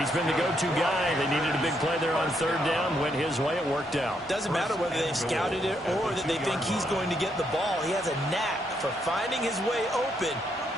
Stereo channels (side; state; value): both; normal; correlation 0.76